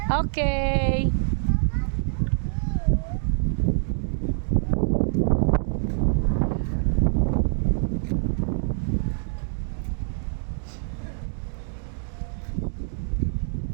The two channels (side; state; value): left; silent; digital silence